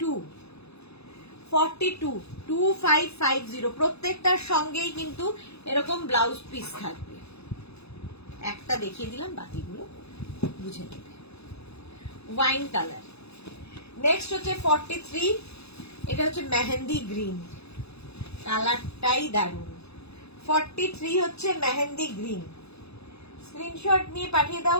2550। প্রত্যেকটার সঙ্গেই কিন্তু এরকম ব্লাউজ পিস থাকবে। একটা দেখিয়ে দিলাম, বাকিগুলো বুঝে নেবে। Wine colour. নেক্সট হচ্ছে 43, এটা হচ্ছে মেহেন্দি গ্রিন, কালারটাই দারুণ। 43 হচ্ছে মেহেন্দি গ্রিন। স্ক্রিনশট নিয়ে পাঠিয়ে দাও,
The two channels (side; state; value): right; late; 0.79 ms